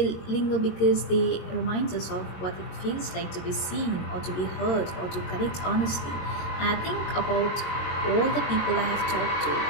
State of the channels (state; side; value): late; right; 22 ms